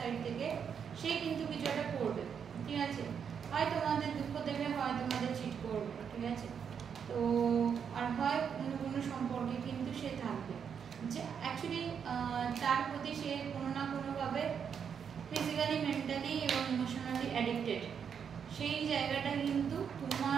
থেকে, সে কিন্তু কিছু একটা করবে। ঠিক আছে, হয় তোমাদের দুঃখ দেবে, হয় তোমাদের চিট করবে। ঠিক আছে, তো আর হয় অন্য কোনো সম্পর্কে কিন্তু সে থাকবে, যে অ্যাকচুয়ালি তার প্রতি সে কোনো না কোনোভাবে ফিজিক্যালি, মেন্টালি এবং ইমোশনালি অ্যাডিক্টেড। সেই জায়গাটা কিন্তু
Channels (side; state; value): left; quieter; 7.3 dB